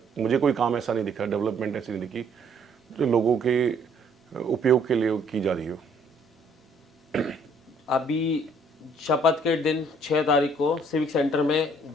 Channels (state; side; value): normal; both; correlation 0.63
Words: मुझे कोई काम ऐसा नहीं दिखा, डेवलपमेंट ऐसी नहीं दिखी जो लोगों के उपयोग के लिए की जा रही हो। अभी शपथ के दिन 6 तारीख को सिविक सेंटर में